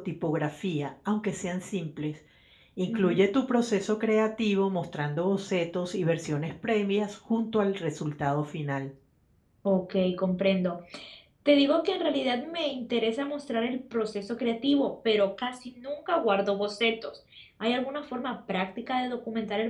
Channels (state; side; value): identical; both; correlation 1.00